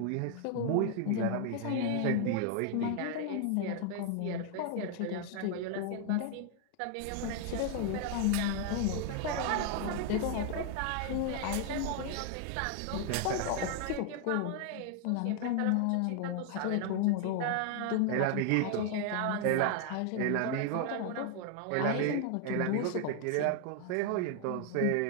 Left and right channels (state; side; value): different; both; correlation 0.00